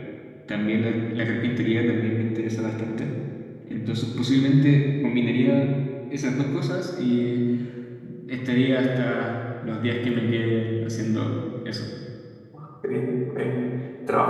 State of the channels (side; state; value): both; identical; correlation 1.00